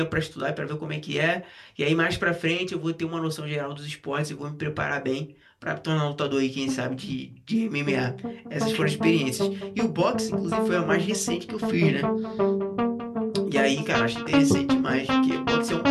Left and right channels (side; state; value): both; identical; correlation 1.00